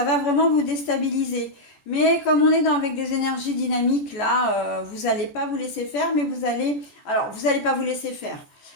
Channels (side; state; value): right; late; 14 ms